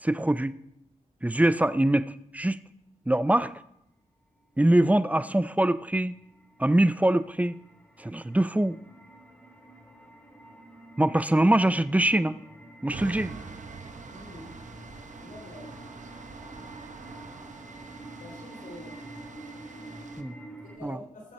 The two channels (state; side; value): normal; both; correlation 0.94